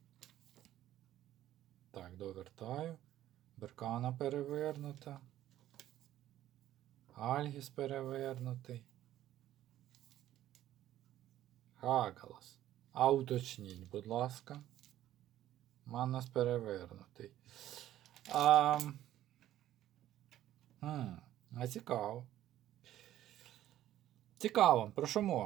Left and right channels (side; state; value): left; quieter; 13.0 dB